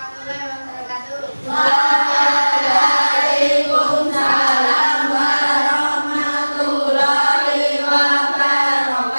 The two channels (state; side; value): inverted; both; correlation -1.00